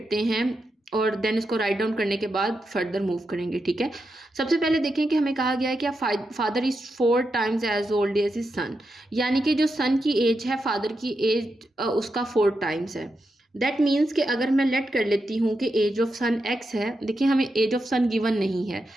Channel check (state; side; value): normal; both; correlation 0.86